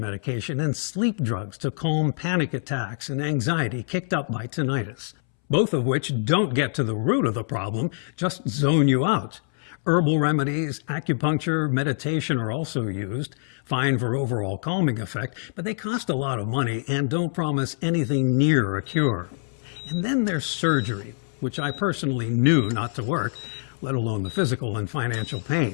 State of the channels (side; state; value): right; silent; 62 dB below the other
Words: and sleep drugs to calm panic attacks and anxiety kicked up by tinnitus, both of which don't get to the root of the problem, just zone you out. Herbal remedies, acupuncture, meditation are also used, fine for overall calming effect, but they cost a lot of money and don't promise anything near a cure. And then there's surgery, which I personally knew not to work, let alone the physical and financial